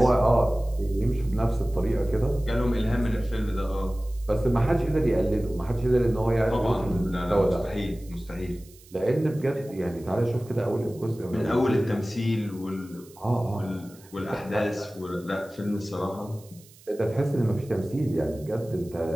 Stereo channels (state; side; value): noise; right; hiss, 25 dB below the sound